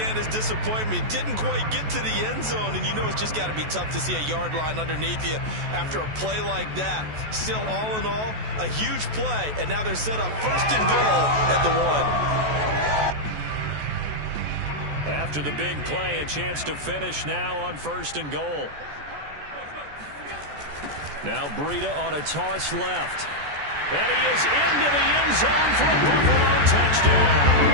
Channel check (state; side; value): late; left; 14 ms